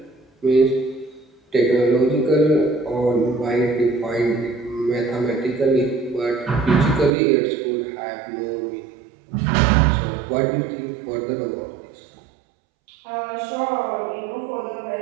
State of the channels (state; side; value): drops out; left; at 7.2 s